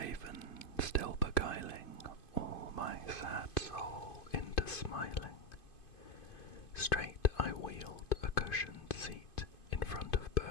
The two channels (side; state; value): right; late; 2.5 ms